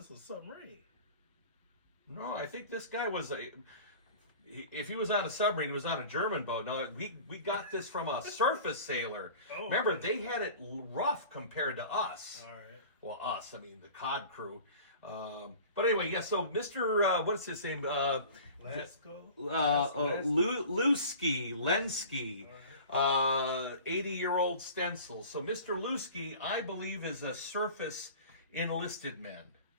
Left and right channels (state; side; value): inverted; both; correlation -0.41